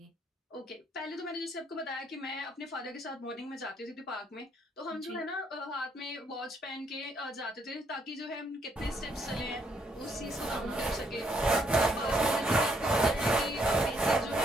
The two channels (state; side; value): normal; both; correlation 0.72